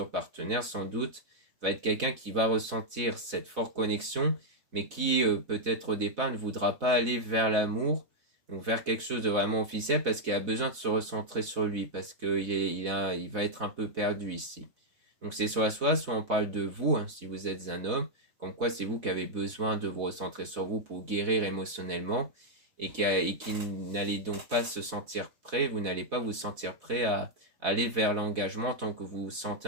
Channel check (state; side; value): late; left; 4.0 ms